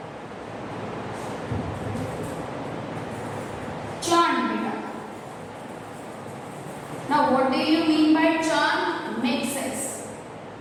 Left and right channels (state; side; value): identical; both; correlation 1.00